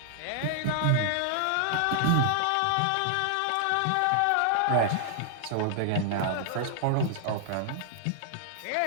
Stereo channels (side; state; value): both; different; correlation 0.00